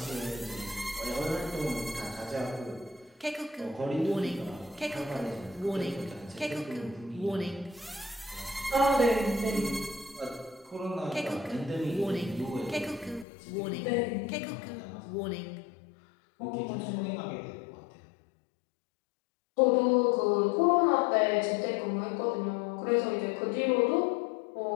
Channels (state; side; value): drops out; right; at 13.2 s